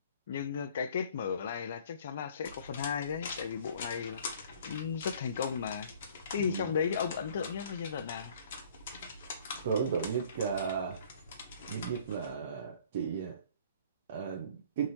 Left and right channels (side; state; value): both; inverted; correlation -0.54